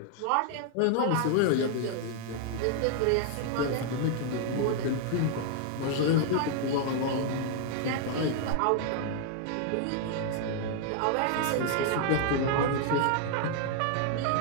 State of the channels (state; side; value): different; both; correlation 0.00